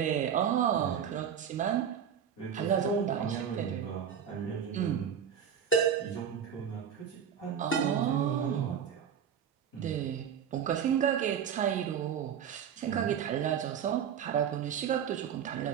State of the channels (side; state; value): left; quieter; 8.1 dB